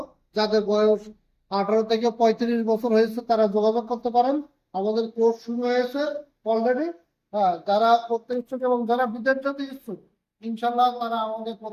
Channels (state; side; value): identical; both; correlation 1.00